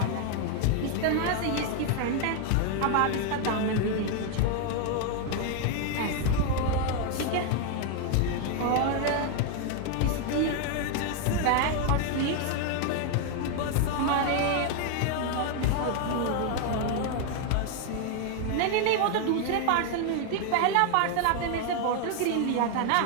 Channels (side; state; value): both; different; correlation 0.01